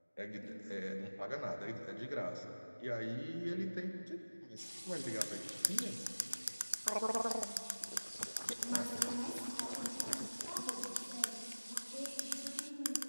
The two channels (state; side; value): inverted; both; correlation -1.00